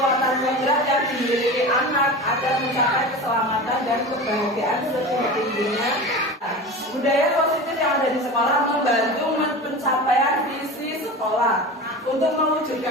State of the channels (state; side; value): normal; both; correlation 0.31